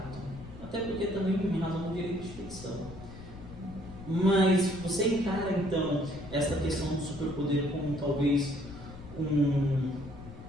Até porque também em razão do direito de petição. Mas você encara então essa questão do superpoder como talvez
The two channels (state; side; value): noise; left; rumble, 15 dB below the sound